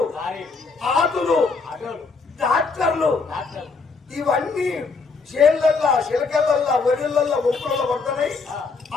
ఆటోలు ట్రాక్టర్లు ఇవన్నీ చేళ్ళల్లా చిలకలల్లా వరియలల్లా ఒప్పులలో పడుతున్నాయి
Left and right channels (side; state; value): right; quieter; 4.5 dB